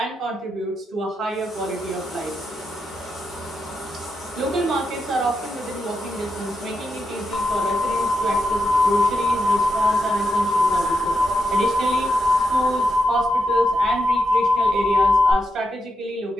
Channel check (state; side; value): normal; both; correlation 0.85